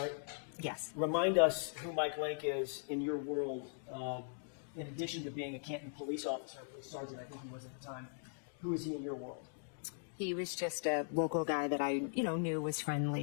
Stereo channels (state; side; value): silent; right; digital silence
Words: Yes. Remind us who Mike Lank is in your world, in addition to being a Canton police officer, police sergeant, I think he was at the time. Who is he in your world? He was just a local guy that I, knew, was